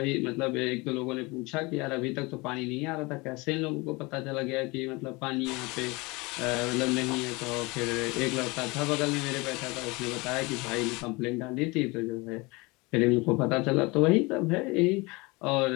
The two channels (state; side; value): quieter; right; 25.1 dB